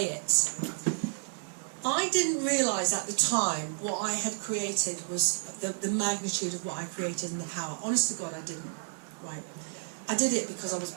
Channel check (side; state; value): left; silent; 57 dB below the other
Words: it. I didn't realise at the time what I had created was the magnitude of what I created and the power. Honest to God, I didn't, right? I did it because I was